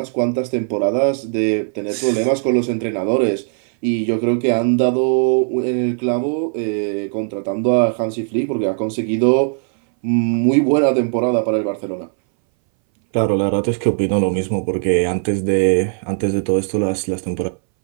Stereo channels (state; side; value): silent; left; 63 dB below the other